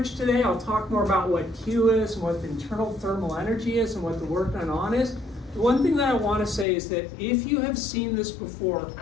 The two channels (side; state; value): right; drops out; at 6.7 s